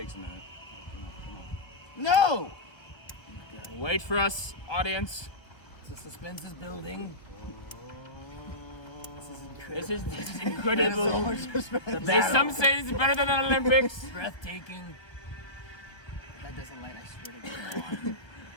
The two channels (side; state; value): right; late; 1.4 ms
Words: a minute. Come on. No! Wait for us, audience. The suspense is building. This is incredible. There's Some say it's better than the Olympics. breathtaking. If that doesn't light, I swear to God.